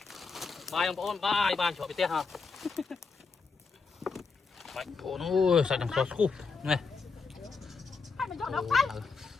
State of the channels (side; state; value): right; quieter; 4.7 dB